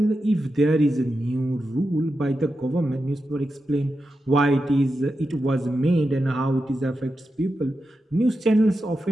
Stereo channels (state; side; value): normal; both; correlation 0.89